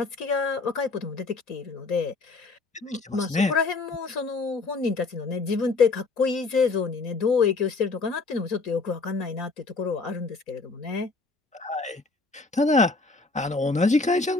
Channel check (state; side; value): quieter; right; 3.8 dB